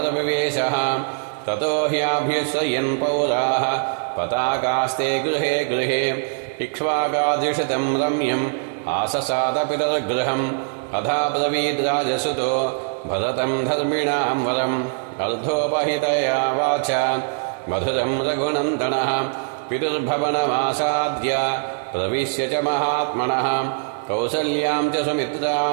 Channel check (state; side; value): silent; left; digital silence